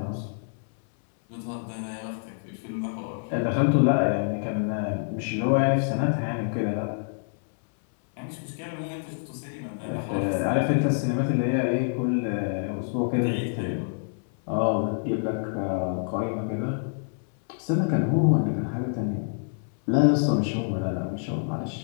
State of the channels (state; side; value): silent; right; 60 dB below the other